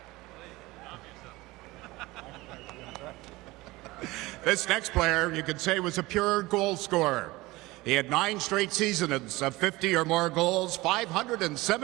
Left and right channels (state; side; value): quieter; left; 20.4 dB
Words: This next player, you could say, was a pure goal scorer. He had 9 straight seasons of 50 or more goals,